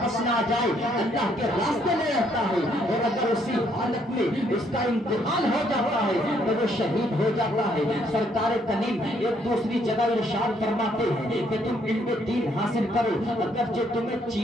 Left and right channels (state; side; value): normal; both; correlation 0.69